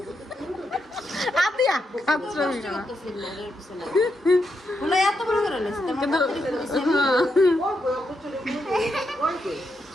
আদিয়া আচ্ছা বলে এত বড় করে নিস কিন্তু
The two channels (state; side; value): normal; both; correlation 0.83